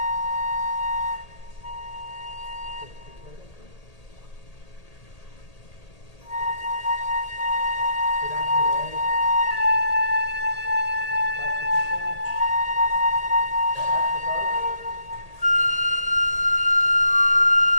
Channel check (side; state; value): right; late; 1.8 ms